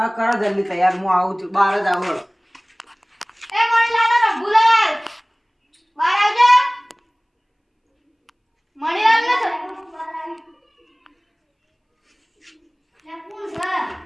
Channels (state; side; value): identical; both; correlation 1.00